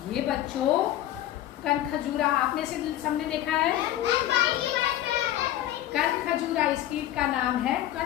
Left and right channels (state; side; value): quieter; right; 13.3 dB